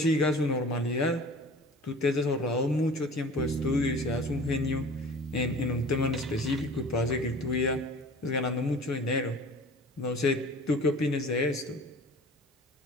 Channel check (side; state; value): both; normal; correlation 0.43